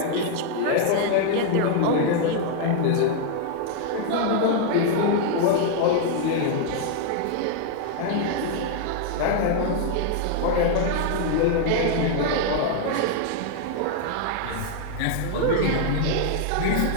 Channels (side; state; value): both; different; correlation 0.00